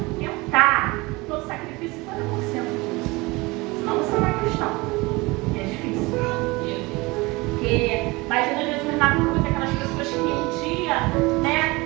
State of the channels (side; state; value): left; quieter; 23.6 dB